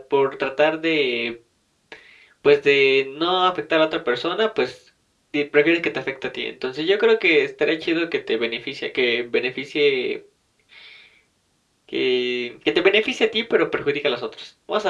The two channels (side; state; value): both; identical; correlation 1.00